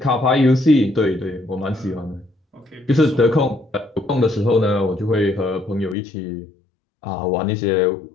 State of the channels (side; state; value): right; drops out; at 6.0 s